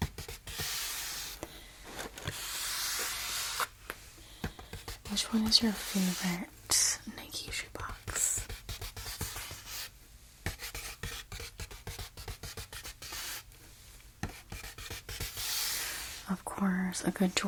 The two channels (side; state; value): both; identical; correlation 1.00